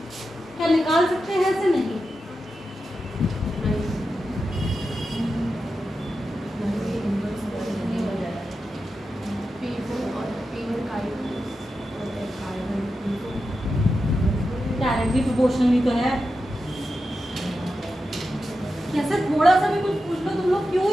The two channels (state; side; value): normal; both; correlation 0.90